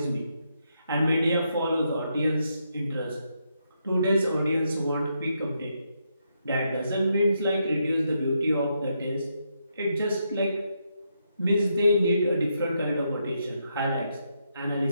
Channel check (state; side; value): inverted; both; correlation -0.80